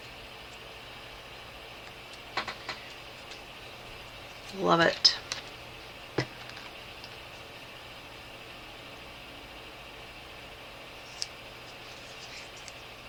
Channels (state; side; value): identical; both; correlation 1.00